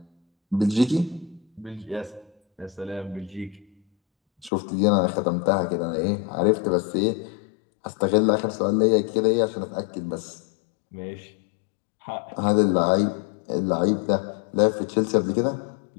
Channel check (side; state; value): right; drops out; at 4.5 s